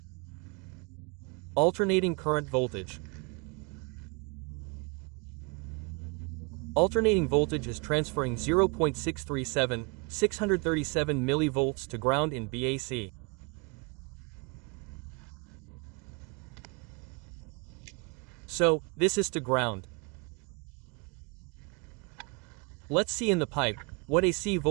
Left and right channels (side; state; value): left; quieter; 31.4 dB